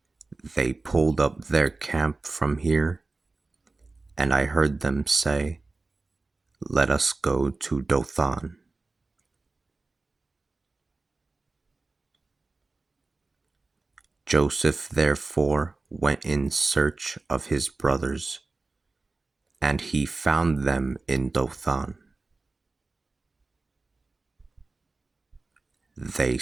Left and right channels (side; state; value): left; quieter; 3.5 dB